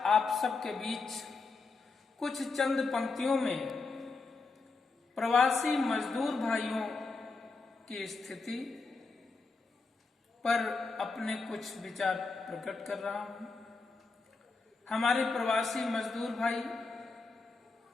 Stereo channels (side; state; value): right; quieter; 4.1 dB